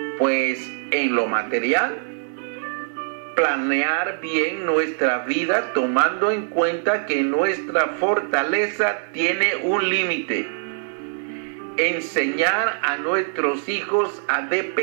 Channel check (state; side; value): silent; left; 64 dB below the other